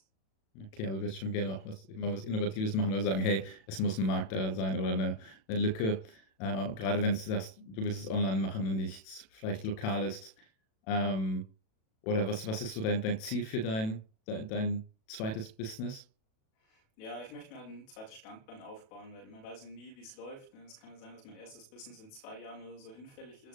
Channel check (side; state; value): right; late; 37 ms